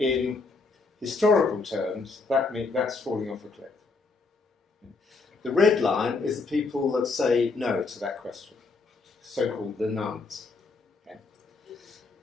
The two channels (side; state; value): right; quieter; 4.0 dB